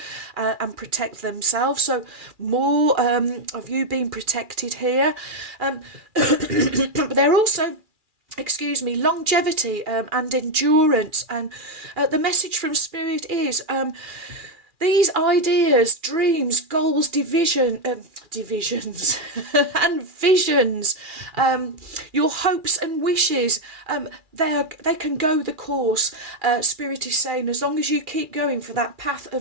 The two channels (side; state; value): left; late; 2.4 ms